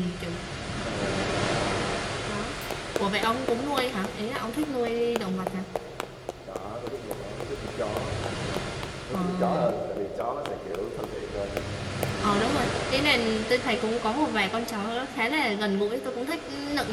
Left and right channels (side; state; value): both; identical; correlation 1.00